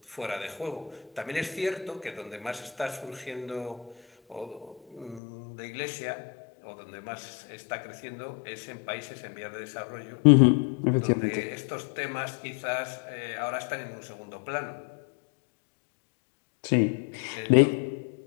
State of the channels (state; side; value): drops out; right; at 5.2 s